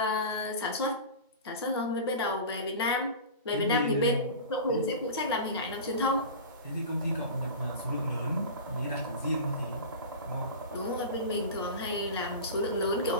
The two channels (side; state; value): both; inverted; correlation -0.31